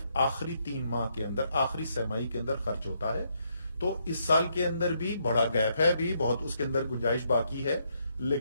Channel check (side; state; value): both; inverted; correlation -0.75